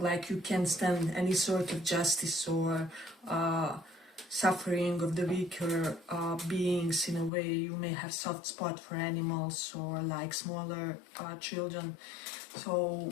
like you can't stand any sort of justice or suffering of the weaker beings in a way. You may have soft spot for animals or like smaller children. So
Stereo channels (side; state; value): right; drops out; at 7.3 s